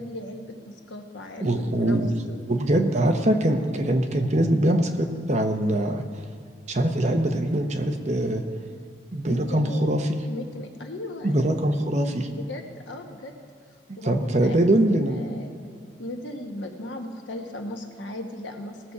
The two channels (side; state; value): both; normal; correlation 0.74